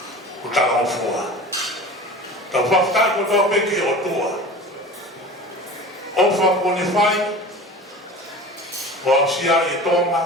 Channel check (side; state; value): both; normal; correlation 0.37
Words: ko tala o fua. Ta whaftai ko toa peke o tua. O whako ne whai, o ausia e